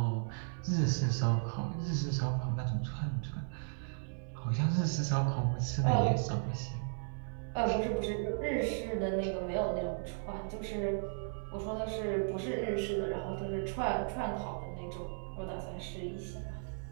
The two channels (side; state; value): left; silent; 54 dB below the other